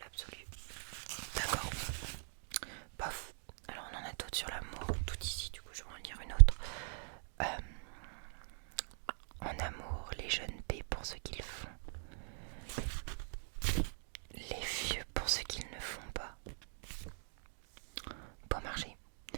D'accord. Bof. Alors on en a d'autres sur l'amour, tout ici, du coup je vais en lire une autre. En amour, les jeunes paient pour ce qu'ils font, les vieux pour ce qu'ils ne font pas. Bon marché.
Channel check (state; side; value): silent; left; digital silence